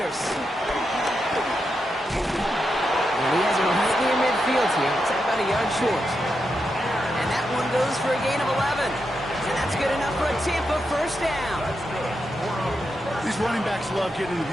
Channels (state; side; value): normal; both; correlation 0.86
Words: And he has him right near midfield here. It's about a yard short. And that one goes for a gain of 11. And that's good enough for a Tampa 1st down. These running backs love getting into